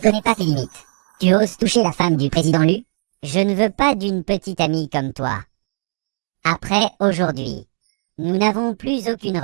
pas tes limites. Tu oses toucher la femme du président Lu? Je ne veux pas d'une petite amie comme toi. Après aujourd'hui, nous n'avons plus aucune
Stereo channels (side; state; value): left; silent; 57 dB below the other